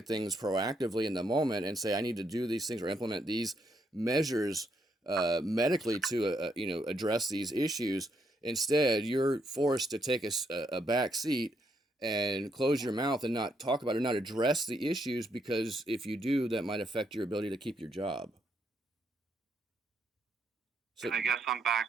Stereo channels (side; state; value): both; normal; correlation 0.76